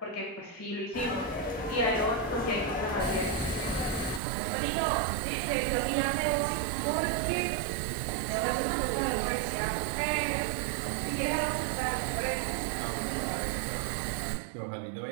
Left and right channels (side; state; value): left; drops out; at 4.2 s